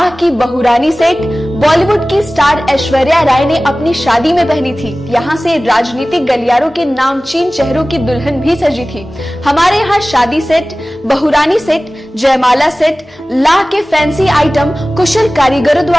की बहुरानी सेट बॉलीवुड की स्टार ऐश्वर्या राय ने अपनी शादी में पहनी थी। यहाँ से राजनीतिक गलियारों के नामचीन चेहरों की दुल्हन भी सजी थी। हमारे यहाँ शादी सेट, बहुरानी सेट, जयमाला सेट, लाह के फैंसी आइटम कुशल कारीगरों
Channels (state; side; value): normal; both; correlation 0.97